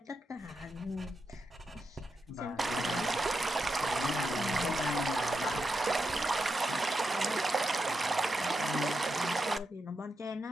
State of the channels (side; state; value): both; normal; correlation 0.86